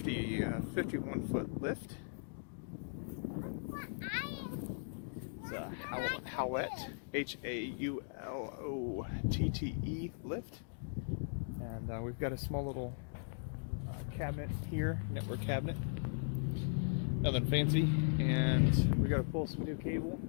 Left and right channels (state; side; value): silent; right; digital silence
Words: foot lift. It's a Haulotte, Haulotte lift. And we've got a small little cabinet here, network cabinet. Nothing fancy. And we got to pull some new cable